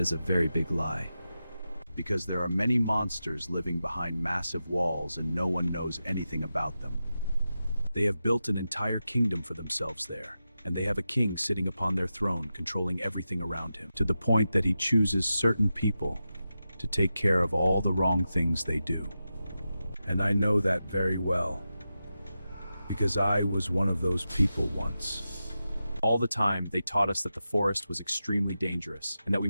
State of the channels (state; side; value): inverted; both; correlation -0.91